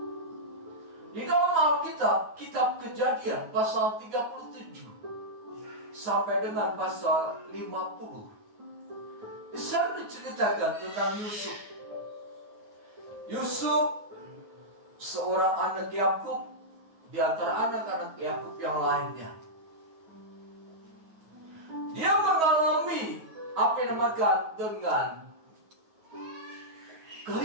di dalam Alkitab, kitab Kejadian pasal 37 sampai dengan pasal 50, Kisah diceritakan tentang Yusuf. Yusuf seorang anak Yakub di antara anak-anak Yakub yang lainnya. Dia mengalami apa yang dinamakan dengan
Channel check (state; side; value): late; left; 9.4 ms